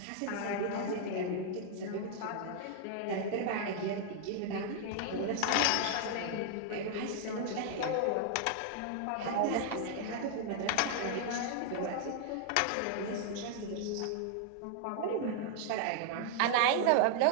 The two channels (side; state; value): both; different; correlation 0.00